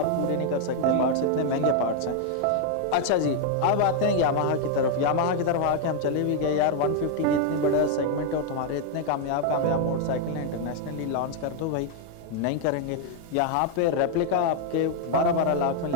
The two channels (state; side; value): different; both; correlation 0.00